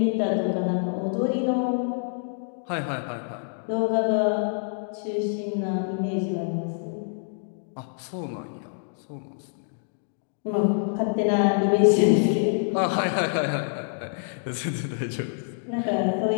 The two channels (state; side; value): silent; right; digital silence